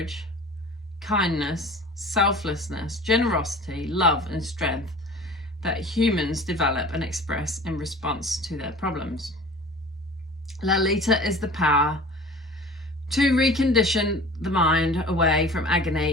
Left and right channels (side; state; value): both; normal; correlation 0.42